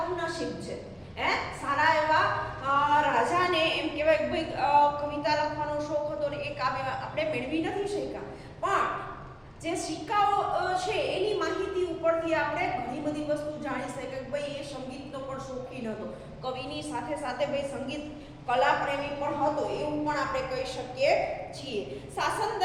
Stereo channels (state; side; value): identical; both; correlation 1.00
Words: છે. સારા એવા રાજાને એમ કહેવાય કે ભાઈ કવિતા લખવાનો શોખ હતો ને એ કાવ્ય આપણે મેળવી નથી શક્યા. પણ જે સિક્કાઓ છે એની માહિતી ઉપરથી આપણે ઘણી બધી વસ્તુ જાણી શકીએ કે ભાઈ એ સંગીતનો પણ શોખીન હતો. કવિની સાથે સાથે ભાઈ સંગીત કલા પ્રેમી પણ હતો, એવું પણ આપણે કહી શકીએ છીએ. શાસન